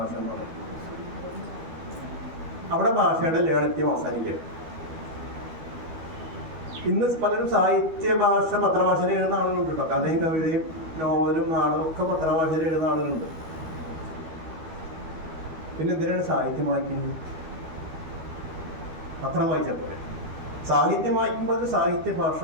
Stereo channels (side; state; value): left; late; 13 ms